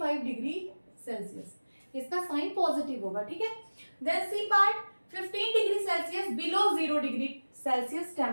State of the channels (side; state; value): both; inverted; correlation -1.00